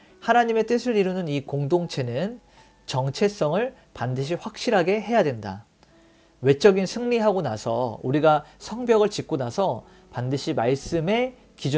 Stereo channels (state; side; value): identical; both; correlation 1.00